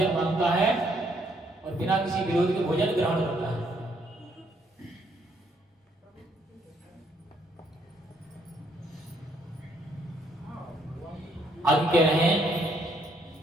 मांगता है और बिना किसी विरोध के भोजन ग्रहण करता है। आगे कह रहे हैं,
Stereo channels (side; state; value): both; normal; correlation 0.70